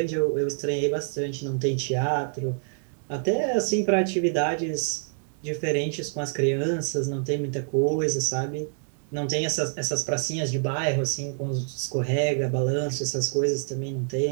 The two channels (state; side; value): silent; left; digital silence